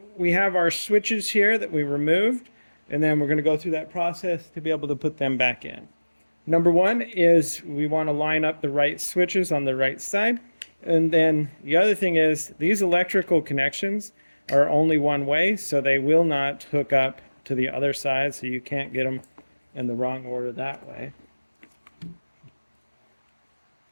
we have our switches here that we removed, and then we're going to go through that process to be able to put them back in. Number one is we want to line up the right switches on the right side. And then the other thing is these electrical connections are only one way, so they will not hook up to the other side, so you can't get them in the wrong order that way.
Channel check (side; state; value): both; inverted; correlation -1.00